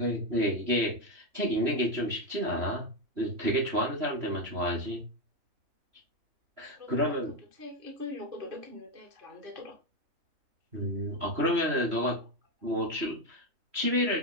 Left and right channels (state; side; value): late; left; 3.0 ms